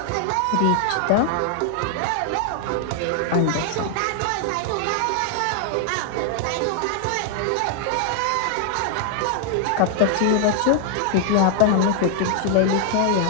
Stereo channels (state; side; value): different; both; correlation 0.00